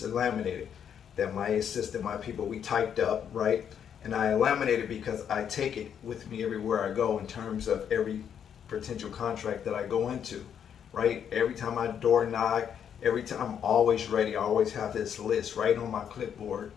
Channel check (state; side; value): quieter; right; 8.4 dB